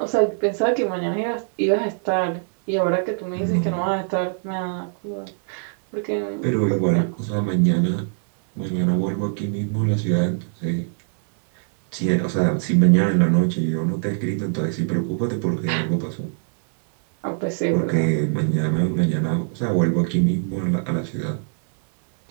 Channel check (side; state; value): left; silent; 64 dB below the other